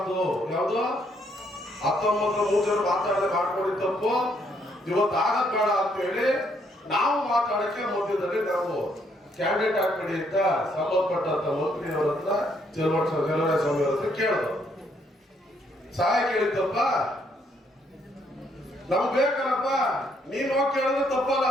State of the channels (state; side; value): normal; both; correlation 0.71